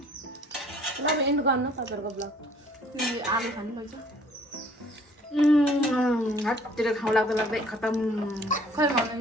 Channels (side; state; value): both; normal; correlation 0.57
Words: तपाईँ एन्ड गर्नु तपाईँहरूको ब्लग। तिमीले आलु खानु लैछ हाततिर खाउँ लाग्दै खतम खै भन्नु